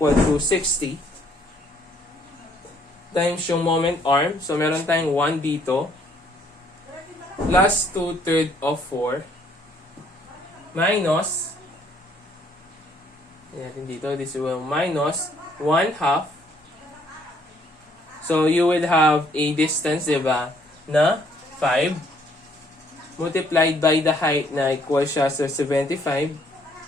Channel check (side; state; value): both; normal; correlation 0.65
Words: to 60 times yung moment arm. So, meron tayong 1 dito plus 2/3 of 4 minus dito, this will minus 1/2. So, you will have a distance, diba, na 5 multiplied by the height na equal siya sa 75